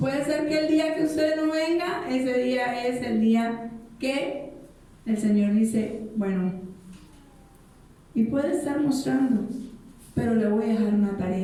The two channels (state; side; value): identical; both; correlation 1.00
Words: ser que el día que usted no venga, ese día es el día que el Señor dice, bueno, y puede estar mostrando, pero le voy a dejar una